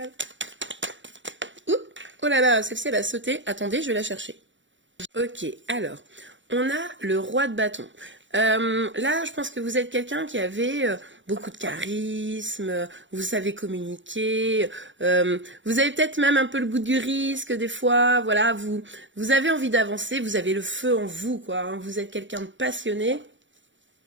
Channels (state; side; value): late; left; 0.55 ms